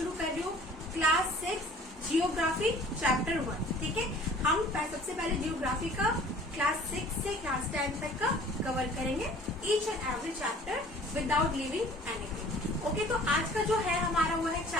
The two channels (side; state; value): both; normal; correlation 0.49